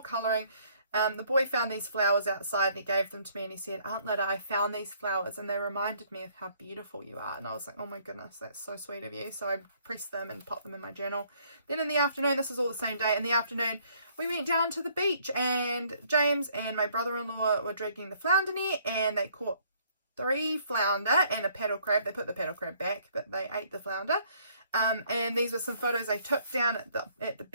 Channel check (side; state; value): both; inverted; correlation -0.63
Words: colouring. The boy found these flowers outside and he gave them to me and he said, Aunt Lida, I found these flowers and they reminded me of how beautiful you are. And I was like, oh my goodness, that's so sweet of you. So I pressed them and popped them in my journal. Then in the afternoon, this is all the same day, in the afternoon, we went down to the beach and James and my brother-in-law were dragging the flounder net and they caught 3 flounder and a paddle crab. They put the paddle crab back, but they ate the flounder. And these are some photos I took down at the